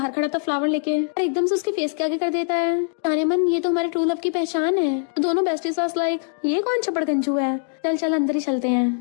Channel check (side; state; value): right; silent; digital silence